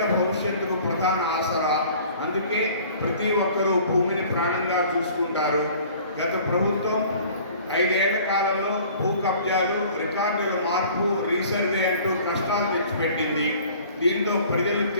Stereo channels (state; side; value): inverted; both; correlation -0.50